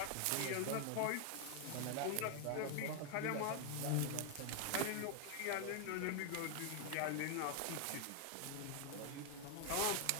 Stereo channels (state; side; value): different; both; correlation 0.00